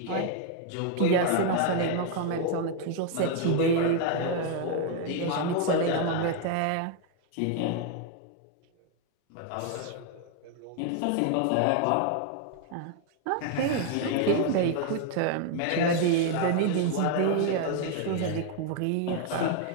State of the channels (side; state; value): both; different; correlation 0.00